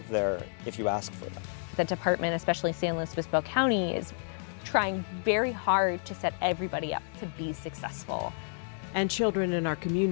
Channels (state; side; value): silent; right; digital silence